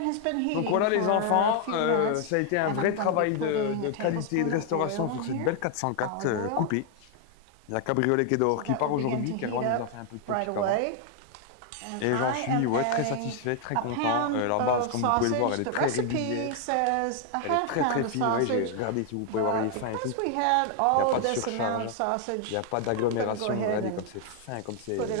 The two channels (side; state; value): both; different; correlation 0.00